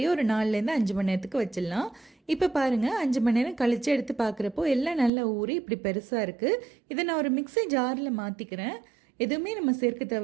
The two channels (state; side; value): drops out; left; at 5.1 s